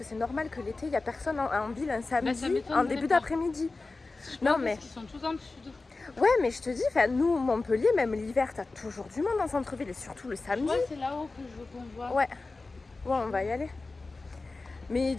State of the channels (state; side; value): quieter; right; 3.5 dB